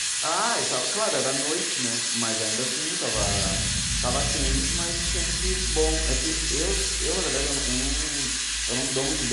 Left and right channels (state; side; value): identical; both; correlation 1.00